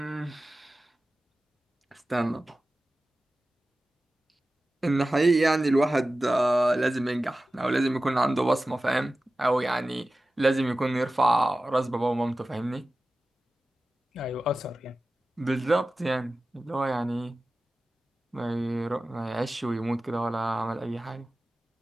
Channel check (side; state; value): both; normal; correlation 0.95